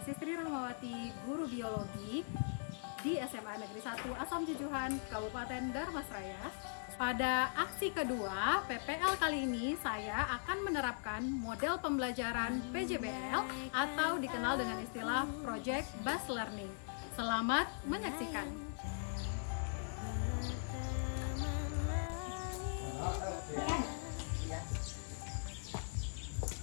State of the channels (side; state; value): right; silent; 51 dB below the other